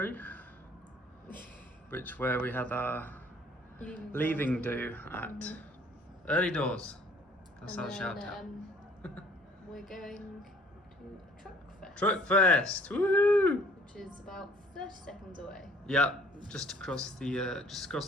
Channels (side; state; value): both; normal; correlation 0.56